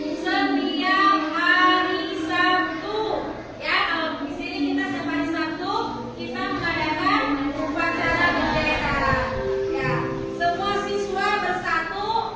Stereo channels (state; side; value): identical; both; correlation 1.00